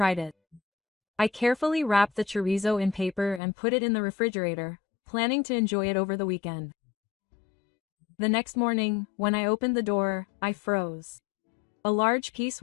it. I carefully wrapped the chorizo in paper and put it in the refrigerator, planning to enjoy it over the weekend. The next morning, when I opened the door, I froze. A large piece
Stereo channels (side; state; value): right; drops out; at 3.4 s